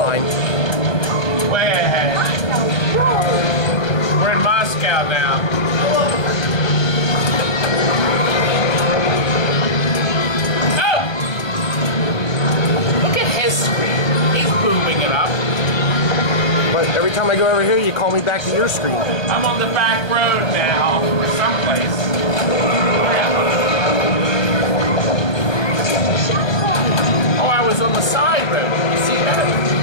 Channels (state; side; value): late; right; 1.2 ms